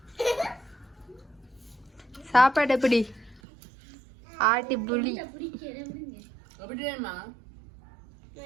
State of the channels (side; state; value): left; drops out; at 3.4 s